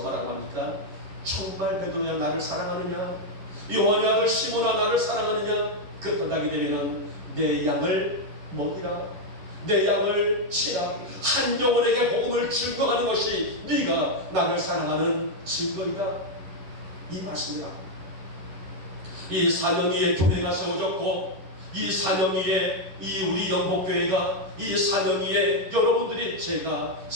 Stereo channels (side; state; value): left; late; 11 ms